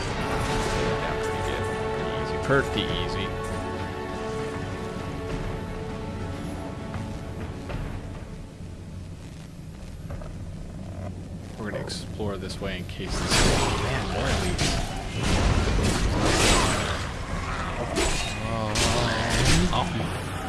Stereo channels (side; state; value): both; identical; correlation 1.00